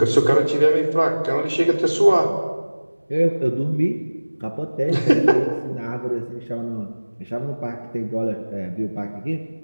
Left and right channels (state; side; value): inverted; both; correlation -1.00